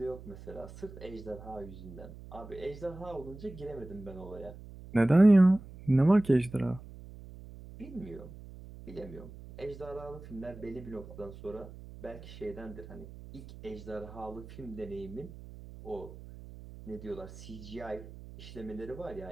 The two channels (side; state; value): right; noise; hum, 15 dB below the sound